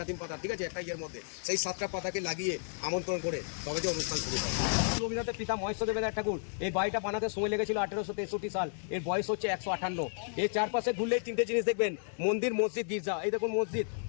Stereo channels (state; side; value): silent; right; digital silence